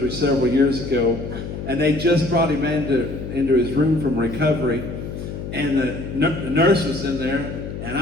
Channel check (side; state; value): left; noise; hum, 8 dB below the sound